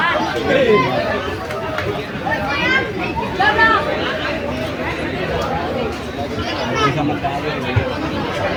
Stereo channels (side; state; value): both; identical; correlation 1.00